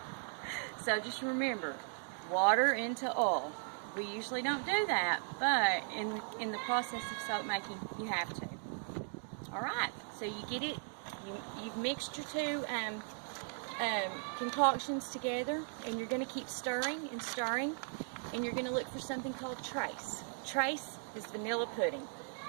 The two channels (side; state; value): left; silent; 53 dB below the other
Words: So just remember, water into oil. We usually don't do that, but in the process of soap making, you have to. Alright, so you get it, you've mixed your two concoctions together, and you're going to keep stirring and stirring, and you're going to look for something called trace. Trace is vanilla pudding.